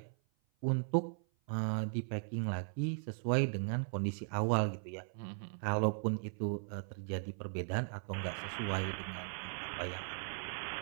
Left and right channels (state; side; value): silent; left; 52 dB below the other